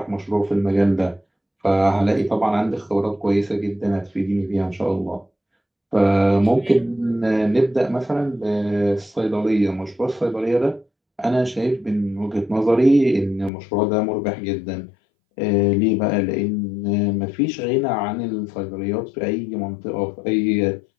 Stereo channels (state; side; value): drops out; right; at 13.5 s